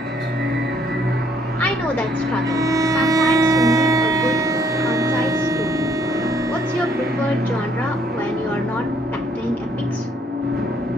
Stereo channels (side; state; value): both; normal; correlation 0.65